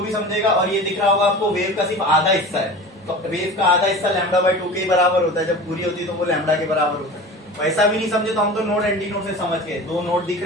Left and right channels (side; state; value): both; normal; correlation 0.35